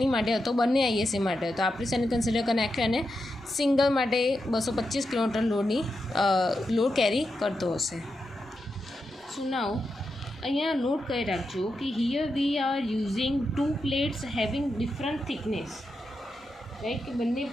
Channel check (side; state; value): both; normal; correlation 0.87